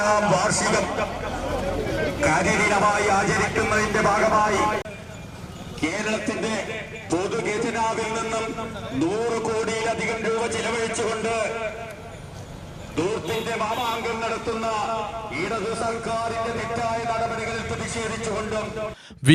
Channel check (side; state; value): both; identical; correlation 1.00